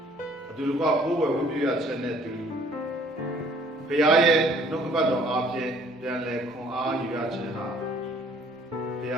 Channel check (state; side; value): normal; both; correlation 0.58